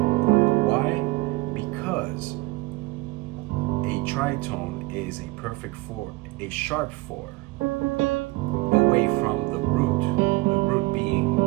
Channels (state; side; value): quieter; left; 21.4 dB